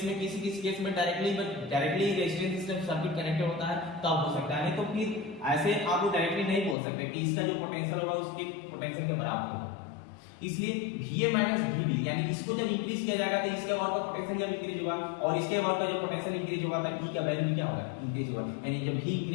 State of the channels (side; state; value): right; drops out; at 6.8 s